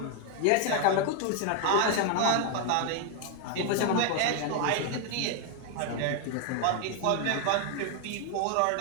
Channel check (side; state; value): both; different; correlation 0.01